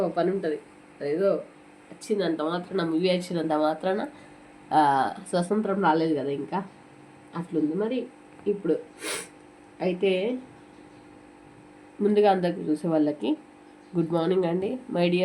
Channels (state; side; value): identical; both; correlation 1.00